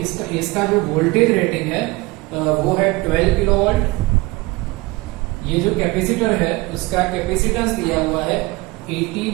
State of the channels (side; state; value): left; quieter; 22.6 dB